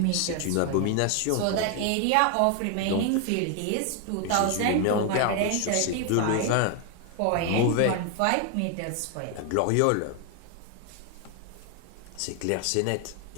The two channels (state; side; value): different; both; correlation 0.00